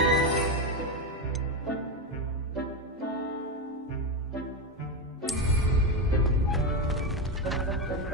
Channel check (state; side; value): normal; both; correlation 0.12